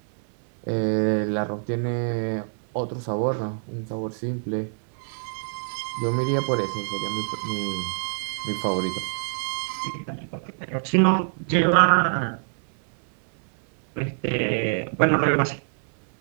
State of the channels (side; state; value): left; silent; 61 dB below the other